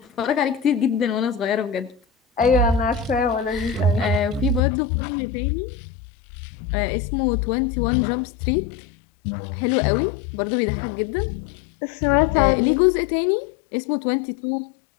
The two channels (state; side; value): drops out; right; at 4.6 s